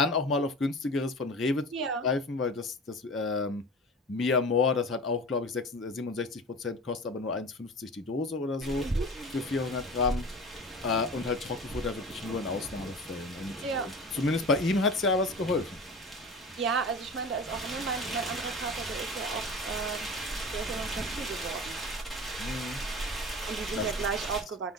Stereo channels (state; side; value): normal; both; correlation 0.35